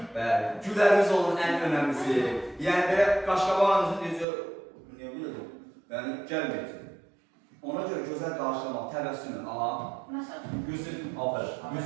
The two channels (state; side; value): drops out; left; at 4.2 s